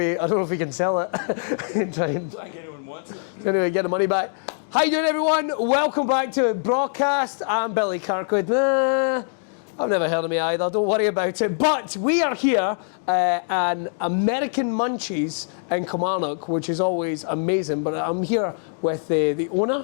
know if we can sell it. Don't think anyone wants it. Anyway, get the money back. How you doing, everyone? Welcome back to Braw Cast. I'm Billy Kirkwood. Nah, I've never heard of me either. Don't worry about it. But we are here at American Munchies in Kilmarnock, which is always amazing. But I'm here with the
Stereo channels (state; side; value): silent; right; digital silence